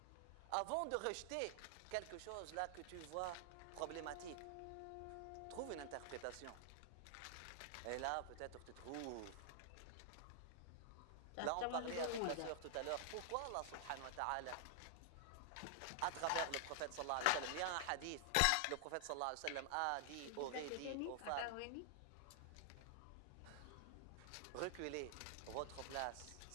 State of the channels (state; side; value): different; both; correlation 0.00